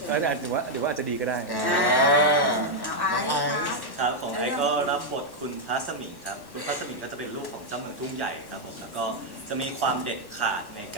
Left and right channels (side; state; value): right; late; 1.1 ms